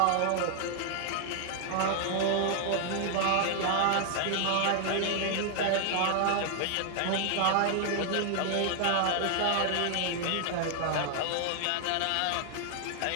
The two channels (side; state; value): both; different; correlation 0.00